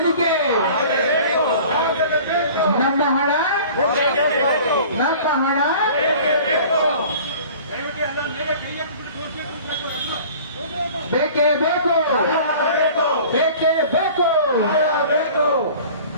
ನಮ್ಮ ಹಣ ಬೇಕೇ ಬೇಕು.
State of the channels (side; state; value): both; inverted; correlation -0.45